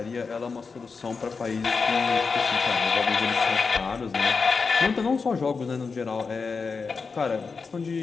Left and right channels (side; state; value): right; quieter; 4.9 dB